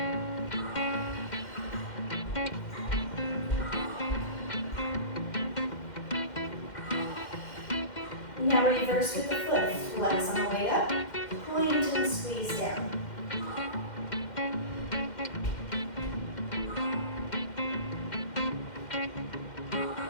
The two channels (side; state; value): right; late; 2.1 ms